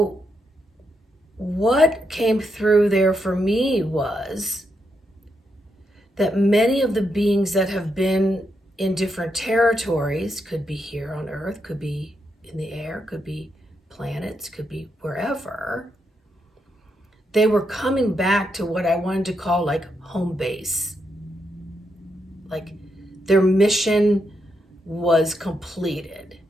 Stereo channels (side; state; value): both; normal; correlation 0.81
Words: what came through there for me was that many of the beings that have been in different territories, could be here on Earth, could be in the air, could be planets, could be wherever, they were coming back to what I wanted to call like home base. Like their mission was completed